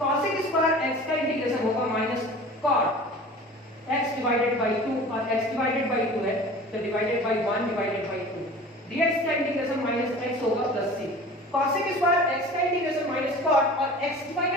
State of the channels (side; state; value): both; normal; correlation 0.40